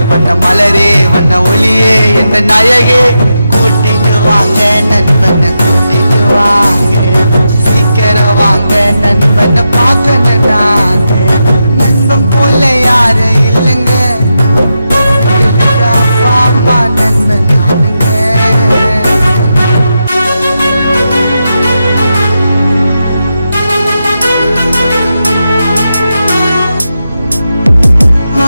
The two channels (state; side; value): inverted; both; correlation -0.87